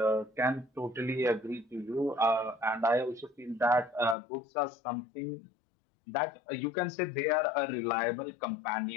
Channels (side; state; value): right; drops out; at 4.2 s